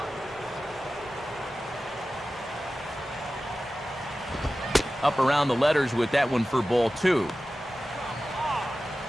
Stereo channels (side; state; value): both; normal; correlation 0.95